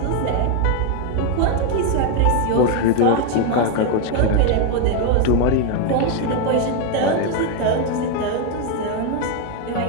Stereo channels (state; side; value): different; both; correlation 0.01